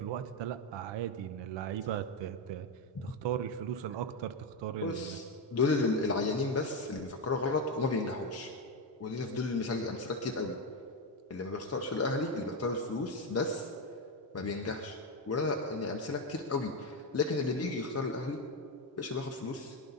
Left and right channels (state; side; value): normal; both; correlation 0.09